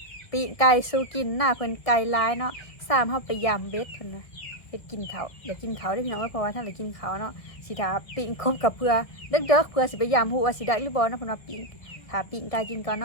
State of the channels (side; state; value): right; late; 1.4 ms